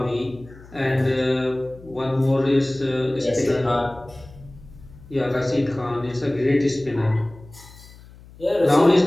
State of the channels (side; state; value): left; noise; hum, 21 dB below the sound